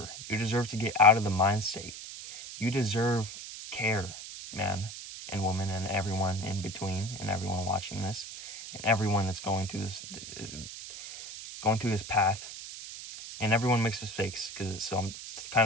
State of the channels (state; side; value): noise; right; hiss, 11 dB below the sound